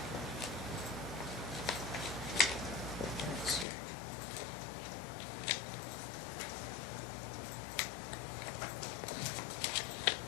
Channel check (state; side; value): drops out; right; at 3.7 s